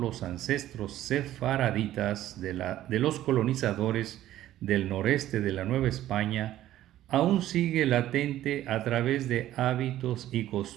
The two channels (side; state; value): left; quieter; 13.4 dB